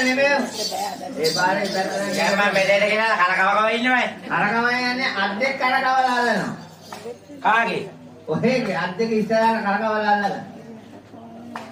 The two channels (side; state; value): both; identical; correlation 1.00